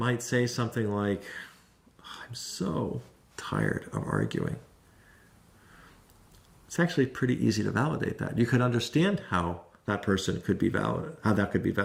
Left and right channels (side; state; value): both; identical; correlation 1.00